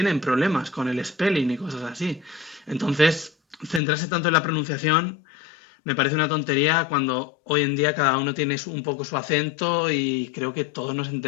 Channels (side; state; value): right; drops out; at 3.8 s